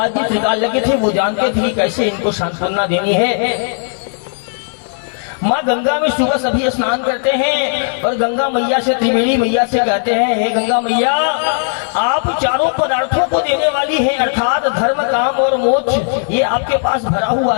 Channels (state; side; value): silent; right; digital silence